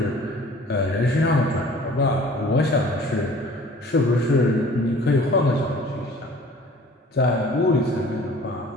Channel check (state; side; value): normal; both; correlation 0.48